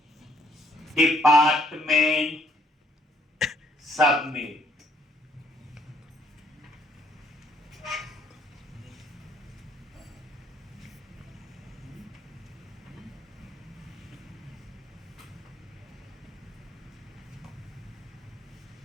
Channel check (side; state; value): both; normal; correlation 0.67